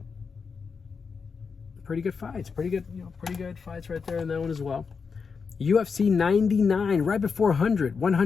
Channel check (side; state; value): right; quieter; 5.5 dB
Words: Pretty good fights. Pretty good fights right there in that one as well. UFC 99, right before 100.